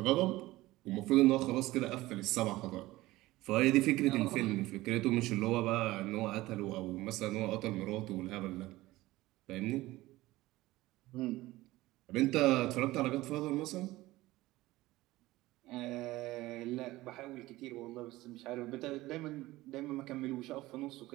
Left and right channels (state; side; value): quieter; left; 18.1 dB